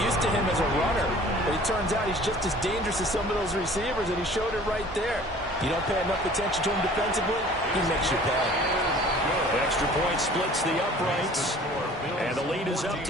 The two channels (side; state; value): both; normal; correlation 0.49